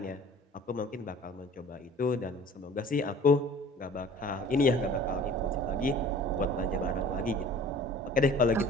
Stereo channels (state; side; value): normal; both; correlation 0.47